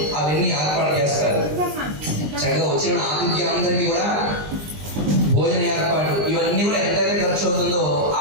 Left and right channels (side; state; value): left; late; 20 ms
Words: అవన్నీ ఏర్పాటు చేస్తారు. చక్కగా వచ్చిన ఆతిథ్యం అందరికీ కూడా భోజన ఏర్పాటు, ఇవన్నీ కూడా ఎంతైతే ఖర్చు అవుతుందో